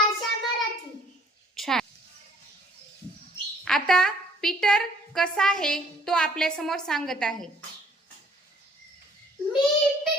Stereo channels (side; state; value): both; normal; correlation 0.59